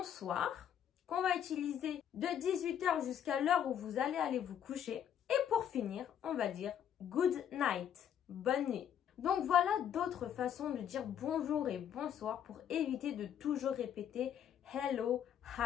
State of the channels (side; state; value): right; quieter; 9.4 dB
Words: qu'on va utiliser de 18 h jusqu'à l'heure où vous allez aller vous coucher. Et pour finir, on va dire good night, bonne nuit. Donc voilà d'autres façons de dire bonjour et bonsoir pour éviter de toujours répéter hello,